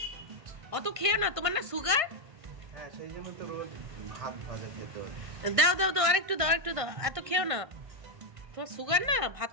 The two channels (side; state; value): left; late; 1.5 ms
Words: অত খেও না, তোমার না সুগার? হ্যাঁ সেই জন্য তো রোজ ভাত ভাজা খেতে হয়। দাও দাও দাও আরেকটু দাও, একটু দাও, এত খেও না। তোমার সুগার না, ভাত